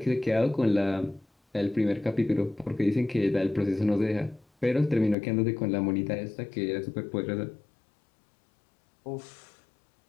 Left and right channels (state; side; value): drops out; right; at 5.2 s